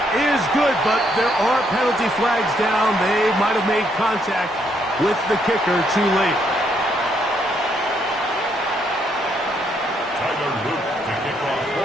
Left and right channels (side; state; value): both; normal; correlation 0.73